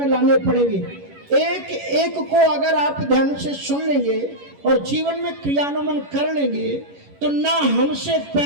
लाने पड़ेंगे। एक एक को अगर आप ध्यान से सुन लेंगे और जीवन में क्रियान्वयन कर लेंगे, तो ना हमसे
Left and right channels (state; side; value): late; left; 11 ms